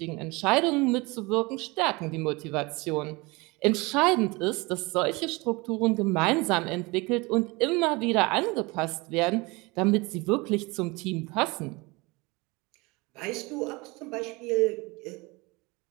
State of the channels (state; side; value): quieter; left; 24.8 dB